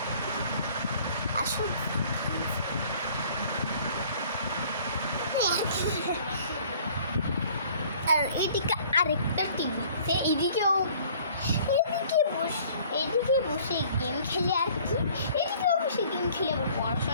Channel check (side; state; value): both; inverted; correlation -0.54